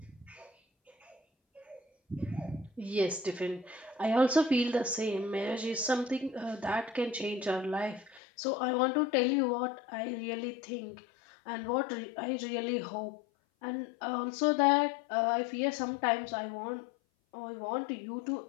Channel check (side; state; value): right; drops out; at 8.2 s